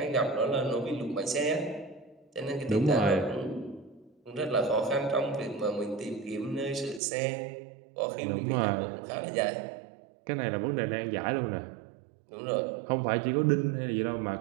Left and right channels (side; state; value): left; drops out; at 7.0 s